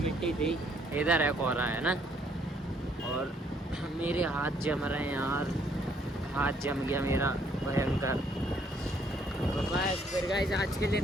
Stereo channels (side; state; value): both; normal; correlation 0.67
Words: थी, इधर है कोहरा, है ना। और मेरे हाथ जम रहे हैं यार, हाथ जम गया मेरा भयंकर। तो बस फिर गाइस आज के लिए